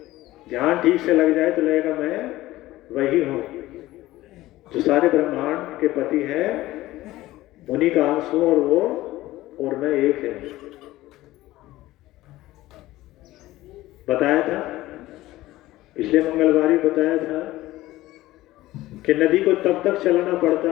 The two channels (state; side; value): quieter; right; 16.8 dB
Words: ध्यान ठीक से लग जाए तो लगेगा मैं वही हूं जो सारे ब्रह्मांड के पति है, उन्हीं का अंश हूं और वो और मैं एक है। बताया था पिछले मंगलवार ही बताया था कि नदी को तब तक चलाना